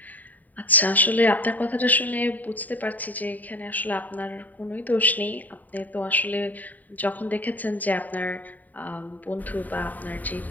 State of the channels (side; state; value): right; late; 0.082 ms